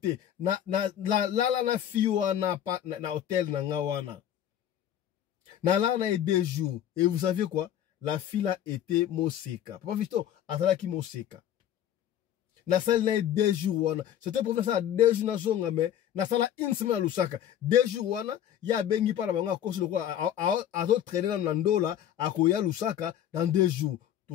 na na fiwa na hotel na nga wana na la na 2 jours et vous savez quoi la fille a été moseka papa visto atala ki moseka na salle na 2 jours wana c'était pour faire ça 2 jours na zonga mais na sala une semaine à Lusaka 2 jours wana ya bengi para bango akosi lokwa azo traîner na ndola akoya Lusaka dans 2 jours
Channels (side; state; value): right; quieter; 10.6 dB